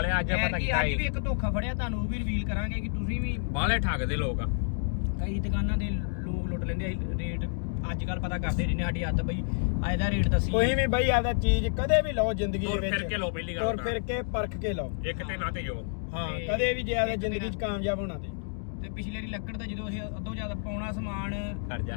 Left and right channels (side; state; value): right; silent; digital silence